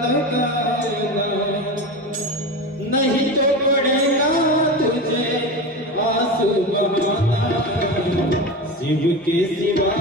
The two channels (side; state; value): both; normal; correlation 0.24